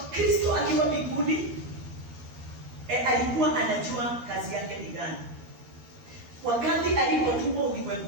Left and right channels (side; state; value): left; late; 13 ms